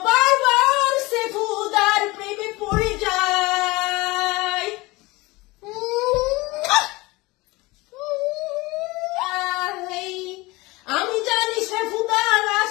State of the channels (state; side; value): quieter; right; 22.3 dB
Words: বারবার সেফুদার প্রেমে পড়ে যাই। আমি জানি সেফুদা